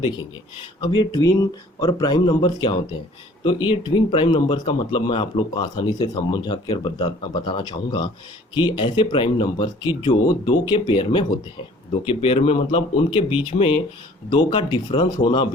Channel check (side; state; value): both; normal; correlation 0.53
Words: अब ये ट्विन और प्राइम नंबर्स क्या होते हैं, तो ये ट्विन प्राइम नंबर्स का मतलब मैं आप लोग को आसानी से समझा कर बताना चाहूँगा कि ऐसे प्राइम नंबर्स की जो दो के पेयर में होते हैं। दो के पेयर में मतलब उनके बीच में दो का डिफरेंस होना